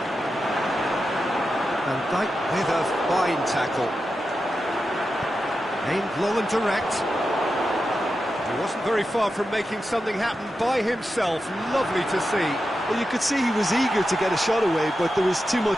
Van Dijk with a fine tackle. Aimed low and direct. He wasn't very far from making something happen by himself. Lovely to see. Well, you could see he was eager to get a shot away, but there was too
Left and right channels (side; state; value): both; normal; correlation 0.90